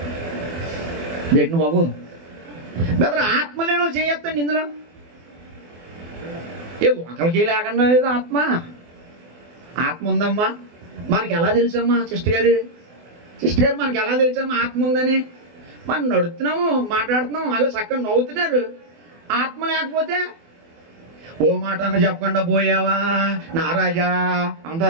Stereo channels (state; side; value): late; left; 24 ms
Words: ఏంటి బాబు బెదర్ ఆత్మ లేని వాళ్ళు చేయొద్దండి. ఇందులో ఒకరికి లేకుండా లేదు ఆత్మ. ఆత్మ ఉందమ్మా. మనకి ఎలా తెలుసమ్మా సిస్టర్ గారు మనకి ఎలా తెలుసమ్మా ఆత్మ ఉందని? మనం నడుస్తున్నాము, మాట్లాడుతున్నాము, అలా చక్కగా నవ్వుతున్నారు. ఆత్మ లేకపోతే ఓ మాట అన్న చెప్పకుండా పోయావా నారాజా